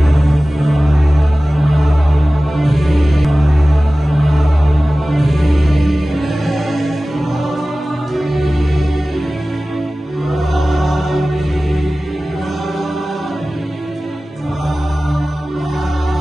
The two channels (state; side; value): normal; both; correlation 0.97